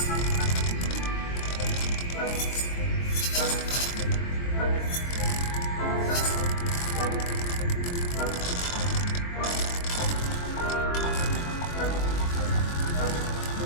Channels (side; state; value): right; late; 23 ms